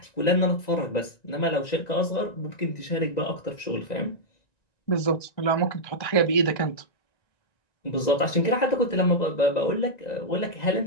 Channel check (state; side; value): late; right; 1.9 ms